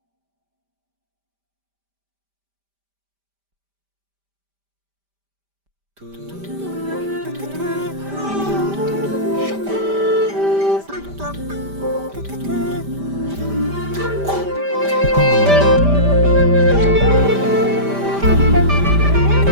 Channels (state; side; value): late; left; 5.1 ms